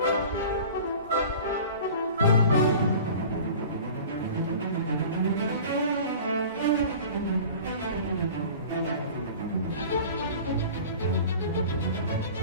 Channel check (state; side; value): inverted; both; correlation -0.41